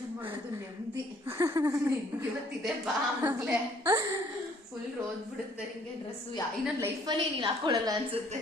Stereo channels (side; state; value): both; normal; correlation 0.61